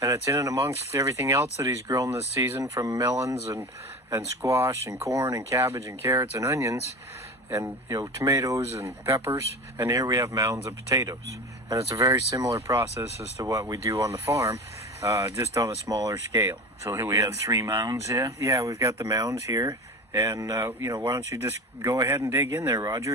it's in and amongst everything else that he's grown this season, from melons and squash and corn and cabbage and carrots and onions and, you know, tomatoes and peppers. And here we have mounds of potatoes. And it's a very similar process as to what we do on the farm, just on a smaller scale. So here we have 3 mounds here? Yeah, we've got the mounds here. And, you know, why don't you just go ahead and dig in there,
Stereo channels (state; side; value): normal; both; correlation 0.30